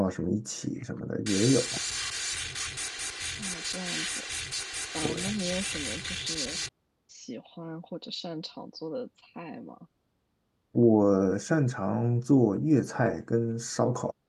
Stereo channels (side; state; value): both; identical; correlation 1.00